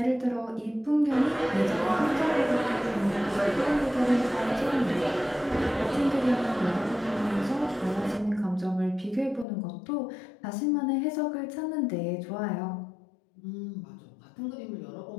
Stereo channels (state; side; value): drops out; right; at 9.5 s